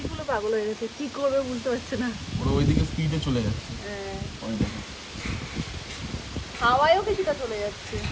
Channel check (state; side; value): identical; both; correlation 1.00